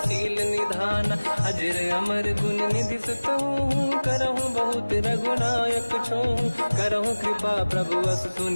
निधान अजर अमर गुण निधि सुतहु करहु बहुत रघुनायक छोहु करहु कृपा प्रभु अस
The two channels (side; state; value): both; inverted; correlation -1.00